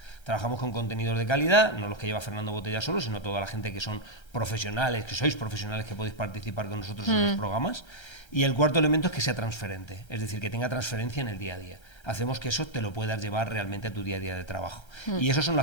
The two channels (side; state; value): right; late; 1.3 ms